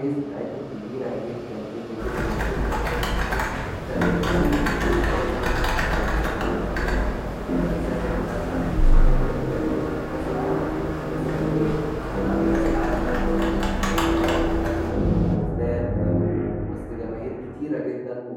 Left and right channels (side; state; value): both; identical; correlation 1.00